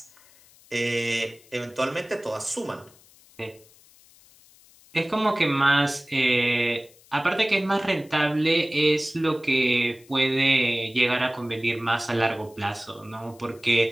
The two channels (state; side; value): noise; left; hiss, 27 dB below the sound